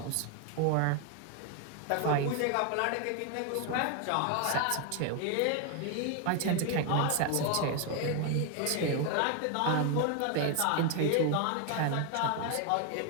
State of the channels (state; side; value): different; both; correlation 0.01